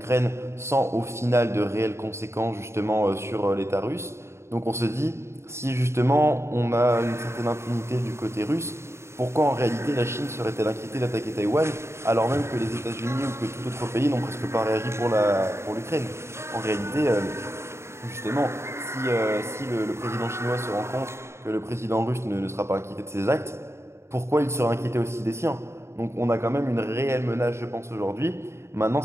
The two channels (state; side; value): late; left; 0.13 ms